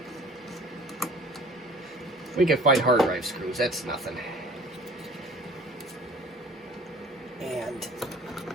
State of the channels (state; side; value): normal; both; correlation 0.48